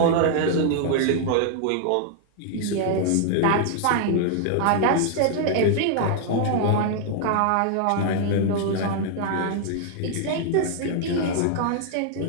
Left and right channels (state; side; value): different; both; correlation -0.01